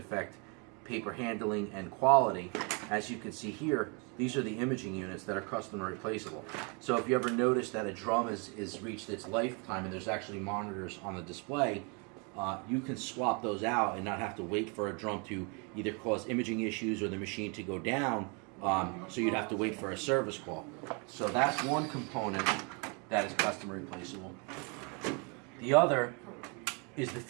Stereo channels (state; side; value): quieter; left; 33.9 dB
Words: paper handling and quality. As you can see here, these are the imaging units that are custom replaceable. So if you ever notice that a drum is reached its lifetime and there's actually monitors on the display, you can swap those out and not have to wait for a drum to either cause imaging issues or the machine to go down, so you'd have to wait for a service call. So that's one component that is custom replaceable. The other is the